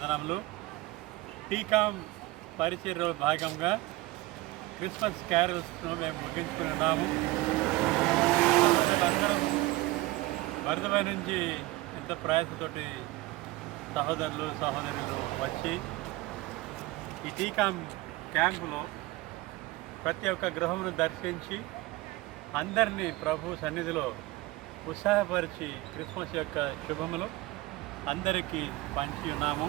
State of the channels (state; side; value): quieter; left; 19.5 dB